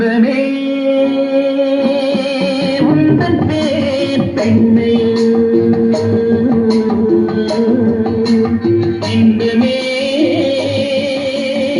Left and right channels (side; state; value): both; identical; correlation 1.00